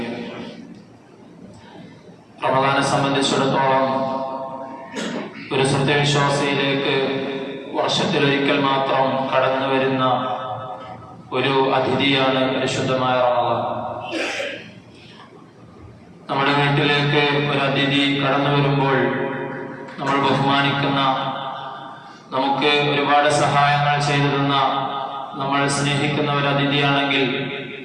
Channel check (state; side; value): identical; both; correlation 1.00